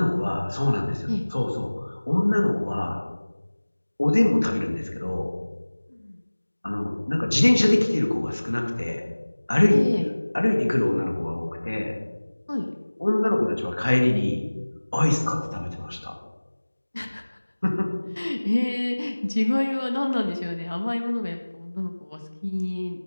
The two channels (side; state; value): both; inverted; correlation -1.00